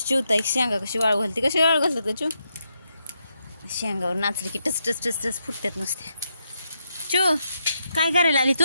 चिवता एक शेंगा कशी वाळू घालते, कशी वाळू घालतात का चू? शेंगावर नाचली की टच टच टच टच फुटतात नुसते. चू काय करायला आली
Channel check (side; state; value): both; inverted; correlation -0.82